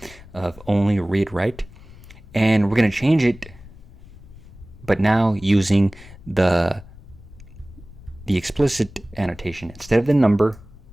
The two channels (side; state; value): left; noise; rumble, 20 dB below the sound